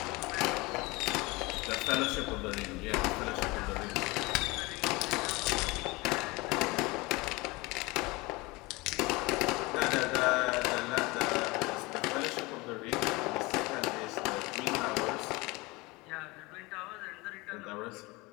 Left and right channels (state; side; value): quieter; right; 23.7 dB